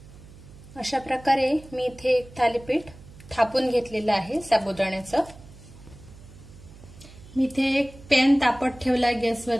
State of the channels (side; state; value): right; noise; hum, 20 dB below the sound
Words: अशा प्रकारे मी इथे एक थालीपीठ थापून घेतलेलं आहे साबुदाण्याचं। मी इथे एक पॅन तापत ठेवलाय